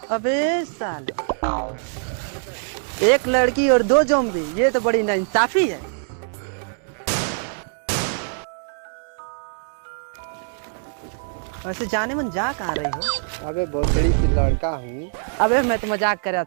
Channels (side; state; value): left; silent; digital silence